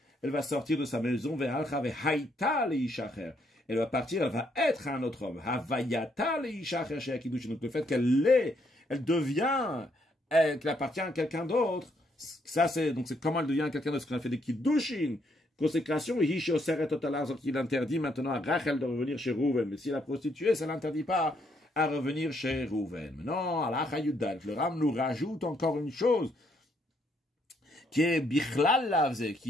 elle va sortir de sa maison, elle va partir, elle va être un autre homme. Donc le fait elle devient, qu'elle appartient à quelqu'un d'autre, ça c'est comment elle devient quelqu'un d'autre, ce qu'on a fait des kiddushin, consécration, il interdit maintenant à Rachel de revenir chez Rouven, mais si elle a prostitué, ça l'interdit pas à revenir chez Rouven. Non, Halacha Yudal, le Ram nous rajoute encore une chose qui est Bichlal Lavze,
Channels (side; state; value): both; normal; correlation 0.73